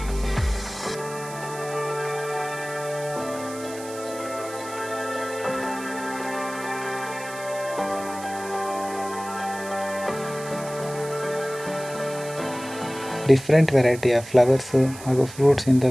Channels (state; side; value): noise; right; hiss, 15 dB below the sound